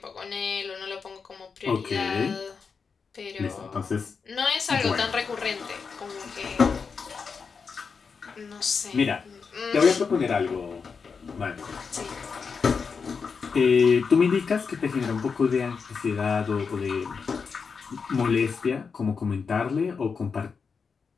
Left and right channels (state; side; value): quieter; right; 5.5 dB